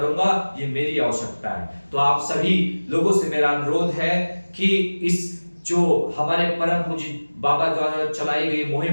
ये मेरी आवश्यकता है। तो आप सभी लोगों से मेरा अनुरोध है कि इस जो हमारे परम पूज्य बाबा द्वारा चलाई गई मुहिम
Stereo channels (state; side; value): inverted; both; correlation -1.00